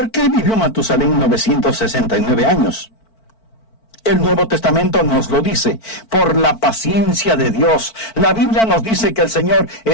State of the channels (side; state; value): right; late; 4.5 ms